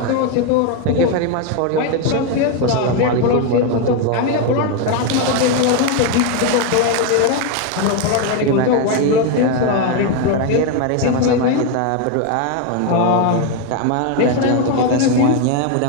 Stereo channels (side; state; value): both; different; correlation 0.02